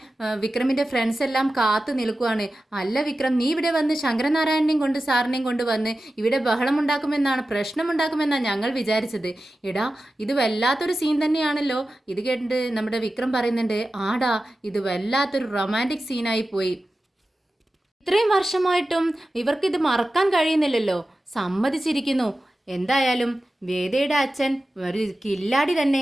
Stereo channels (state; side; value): normal; both; correlation 0.94